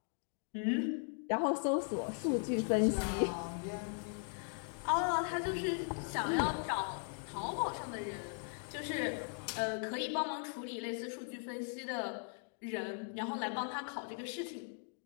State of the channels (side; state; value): right; silent; 52 dB below the other